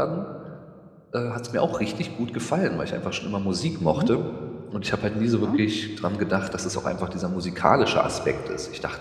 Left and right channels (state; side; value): identical; both; correlation 1.00